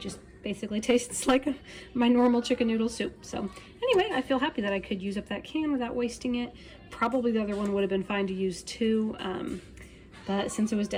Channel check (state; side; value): identical; both; correlation 1.00